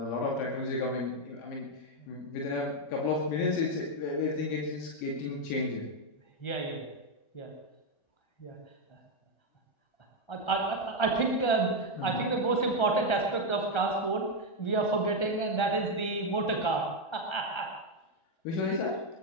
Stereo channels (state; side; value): late; right; 1.3 ms